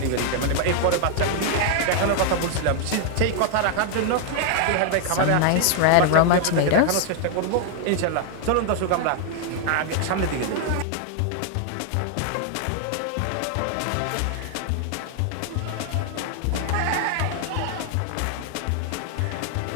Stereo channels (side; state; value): both; different; correlation 0.00